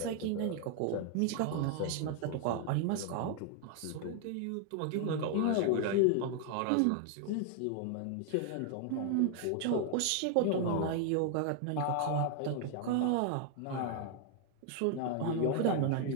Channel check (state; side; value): different; both; correlation 0.00